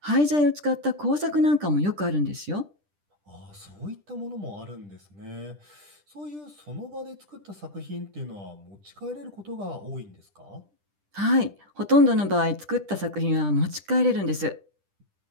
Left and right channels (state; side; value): late; left; 10 ms